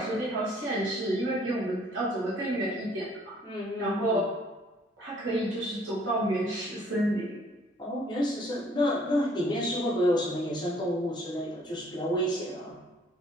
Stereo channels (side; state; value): both; normal; correlation 0.60